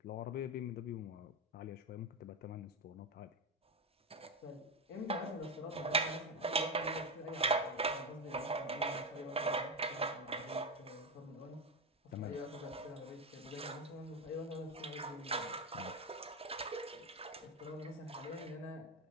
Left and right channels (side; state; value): both; normal; correlation 0.12